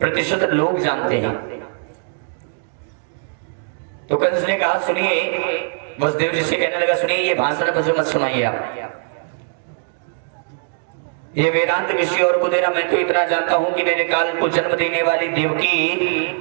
लोग जानते हैं। तो कंस ने कहा, सुनिए, वसुदेव जी से कहने लगा, सुनिए ये भाषण मुझे मत सुनाइए आप, ये वेदांत किसी और को देना। मैं तो इतना जानता हूं कि मेरे काल को जन्म देने वाली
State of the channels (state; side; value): silent; left; 65 dB below the other